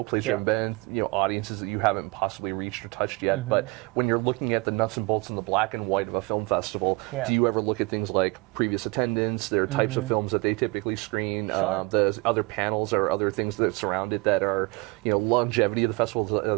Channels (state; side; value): quieter; left; 26.4 dB